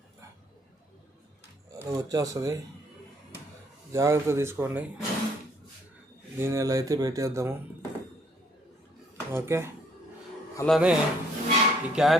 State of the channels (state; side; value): normal; both; correlation 0.65